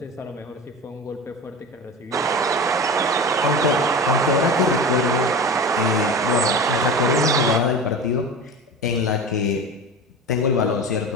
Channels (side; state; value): both; normal; correlation 0.30